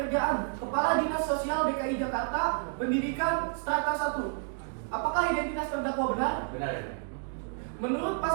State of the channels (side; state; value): left; silent; 58 dB below the other